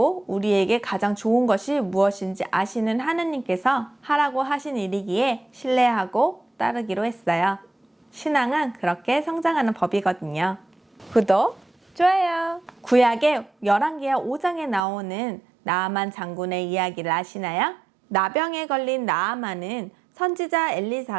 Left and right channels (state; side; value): drops out; left; at 14.8 s